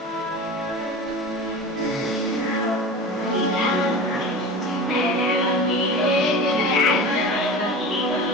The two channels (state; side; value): normal; both; correlation 0.33